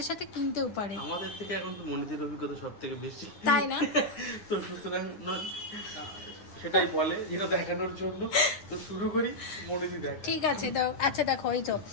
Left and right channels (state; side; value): late; right; 9.8 ms